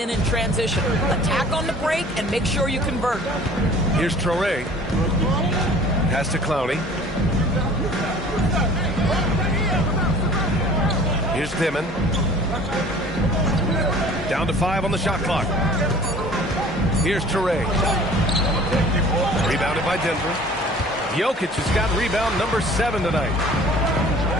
in transition. Attack on the break and make sure you convert. Here's Traore. Pass to Clowney. Here's Dimon. Down to 5 on the shot clock. Here's Traore. Rebounded by Denver. Jokic has got rebound number 7 tonight.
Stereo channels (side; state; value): both; normal; correlation 0.47